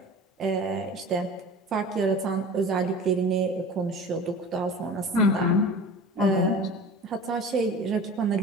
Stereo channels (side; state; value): both; normal; correlation 0.38